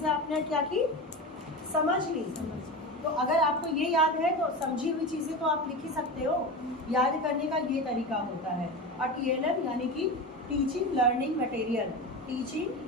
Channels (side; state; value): both; normal; correlation 0.25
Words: आपने क्या की, समझ ली। तो अगर आपको ये याद है तो समझी हुई चीज़ें तो आप लिख ही सकते हो। याद करने का ये तरीका होता है। और TLM यानी कि teaching learning material,